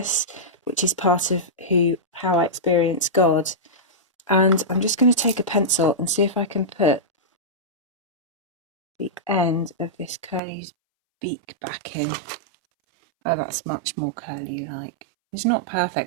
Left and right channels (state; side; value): drops out; left; at 10.4 s